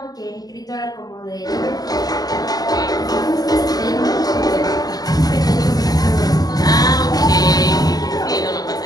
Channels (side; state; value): right; late; 0.18 ms